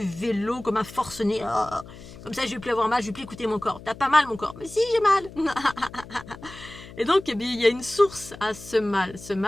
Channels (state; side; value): noise; left; hum, 17 dB below the sound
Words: vélo comme un forcené. Oh, comme ça, je vais plus avoir mal, je vais plus écouter mon corps. T'as pas mal, mon corps? Mais si, j'ai mal. Et donc, eh bien, il y a une source à ce mal. Ce